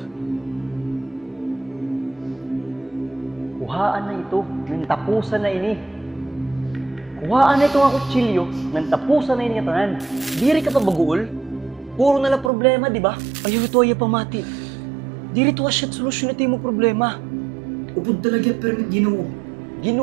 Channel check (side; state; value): left; drops out; at 12.5 s